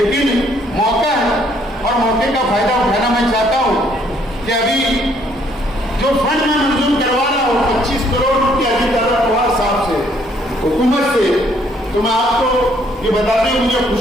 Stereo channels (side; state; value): both; normal; correlation 0.66